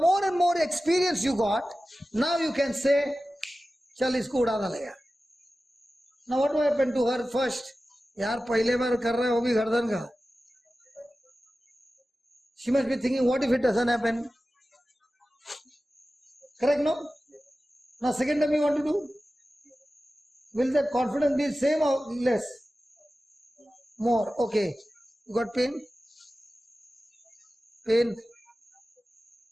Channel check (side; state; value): both; normal; correlation 0.95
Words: and more experience you got, now you can say, Chal isko uda dalega. Now, what happened to her first? यार पहले बार कर रहा है वो भी गर्दन का. She must be thinking, what if it doesn't happen? Correct, no? Now, second time you want to do? Will that confidence be same or less? More. Okay. You got pain? Pain.